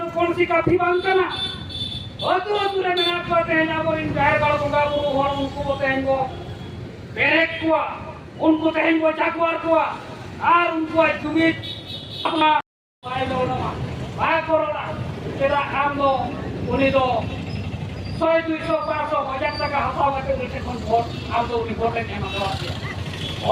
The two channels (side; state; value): both; identical; correlation 1.00